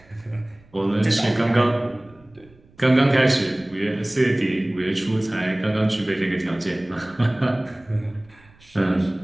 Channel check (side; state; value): right; noise; rumble, 28 dB below the sound